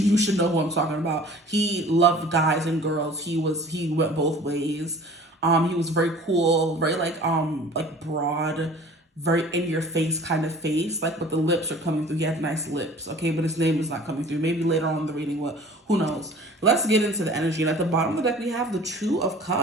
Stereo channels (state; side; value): normal; both; correlation 0.46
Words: you should know who I'm talking about. He loved guys and girls. He went both ways. He was very cool, very like broad, very in your face kind of face. Like, but the lips are coming through. He had nice lips, okay? But his name is not coming through. Maybe later on in the reading, who knows? Let's get into the energy. And at the bottom of the deck, we have the Two of